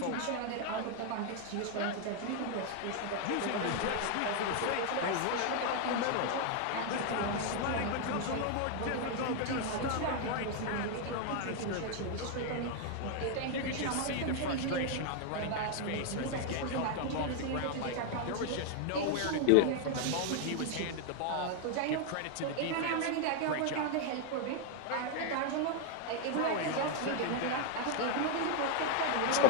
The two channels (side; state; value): both; different; correlation 0.00